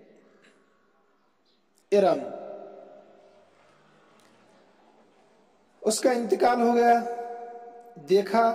ارم، اس کا انتقال ہو گیا، دیکھا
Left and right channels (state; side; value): identical; both; correlation 1.00